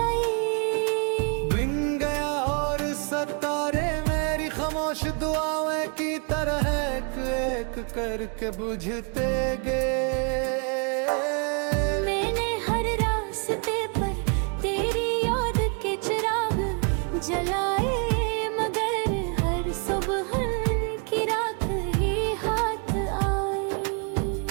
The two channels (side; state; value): left; quieter; 37.2 dB